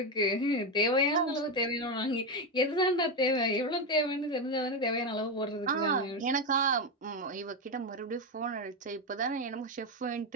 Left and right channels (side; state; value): both; normal; correlation 0.10